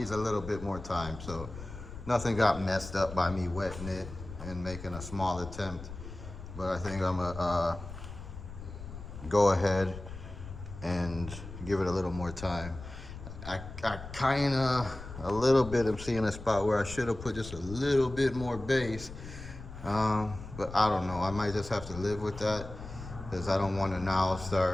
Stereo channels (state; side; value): noise; left; rumble, 12 dB below the sound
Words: a little bit more time. So nothing got messed up by me wetting it and making a small attempt, but I think I'm gonna go ahead and give it a little more time. I kind of a little bit am seeing a spot where I should have put just a little bit more base, but I don't know. I might just have to live with that, because I don't want to now